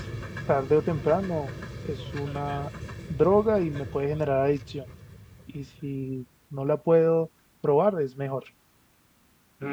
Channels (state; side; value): identical; both; correlation 1.00